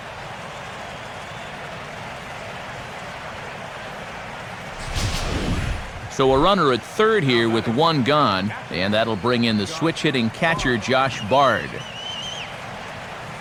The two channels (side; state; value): both; identical; correlation 1.00